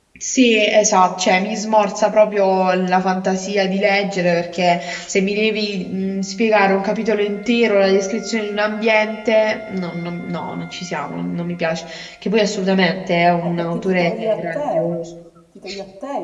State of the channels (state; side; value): identical; both; correlation 1.00